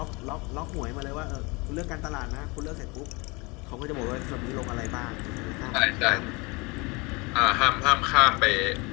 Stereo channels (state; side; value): quieter; right; 27.1 dB